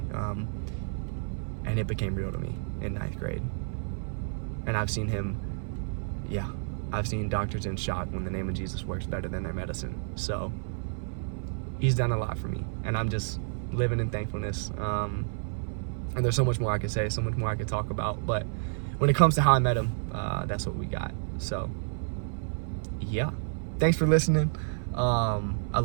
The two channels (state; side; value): silent; left; 55 dB below the other